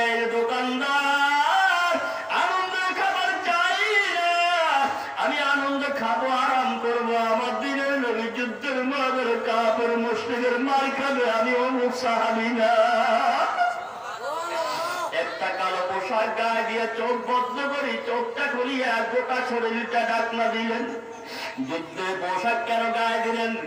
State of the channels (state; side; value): identical; both; correlation 1.00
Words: দোকানদার আনন্দের খাবার চাই না, আমি আনন্দ খাবো, আরাম করবো, আমার দিনের নবী যুদ্ধের ময়দানে কাফের মুশরিকের মার খাবে, আমি অমুক সাহাবী না। একটা কালো পোশাক গায়ে দিয়ে চোখ বন্ধ করি, চোখটা খুলিয়া গোটা শরীরটা ডাকনা দিলেন। যুদ্ধের পোশাক কেন গায়ে দিলেন?